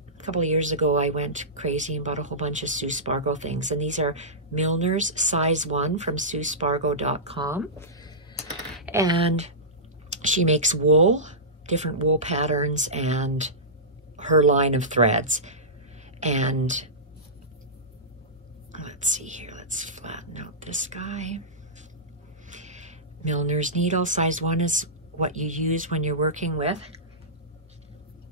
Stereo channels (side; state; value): both; normal; correlation -0.17